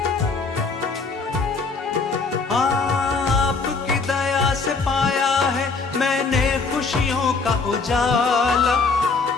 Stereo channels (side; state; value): right; quieter; 4.4 dB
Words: आपकी दया से पाया है मैंने खुशियों का उजाला।